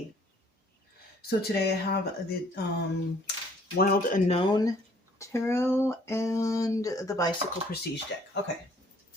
So today I have the Wild Unknown Tarot and the Bicycle Prestige deck. Okay.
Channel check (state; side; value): normal; both; correlation 0.60